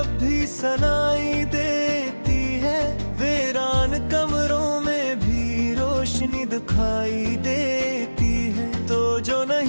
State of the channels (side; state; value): both; inverted; correlation -1.00